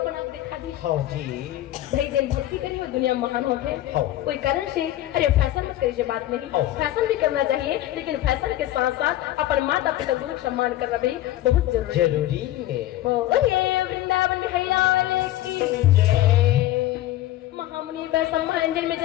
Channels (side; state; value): right; quieter; 14.6 dB